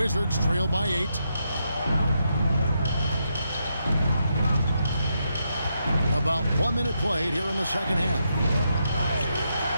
trail by 8. About 1 minute played here in the second half.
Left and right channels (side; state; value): both; inverted; correlation -0.81